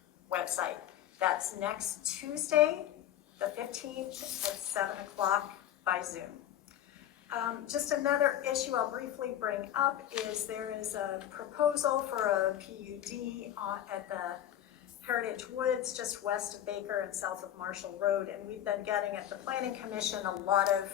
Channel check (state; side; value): quieter; right; 11.4 dB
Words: website. That's next Tuesday, the 15th at 7 o'clock by Zoom. Just another issue I'll briefly bring up is there is a proposal for a PUD at the Heritage Woods just west of Baker and south of Marshall Road, and we've been getting at the Planning Commission a lot of